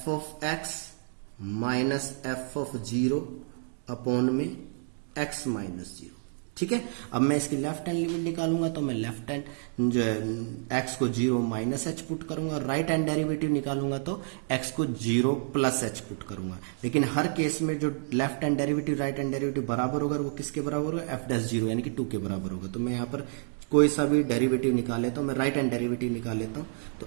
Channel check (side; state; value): left; silent; 58 dB below the other